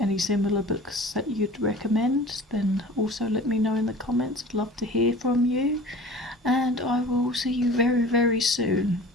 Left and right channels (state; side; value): normal; both; correlation 0.41